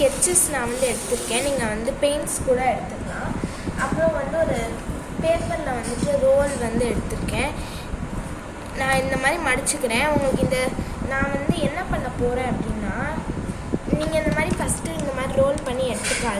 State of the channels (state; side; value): identical; both; correlation 1.00